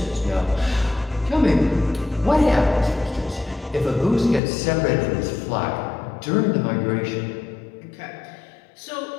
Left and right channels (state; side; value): drops out; right; at 4.4 s